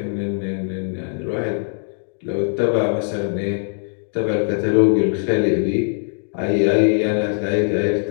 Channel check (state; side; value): silent; right; digital silence